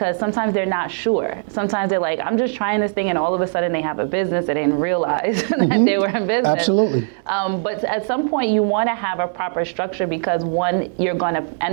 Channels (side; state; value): left; silent; digital silence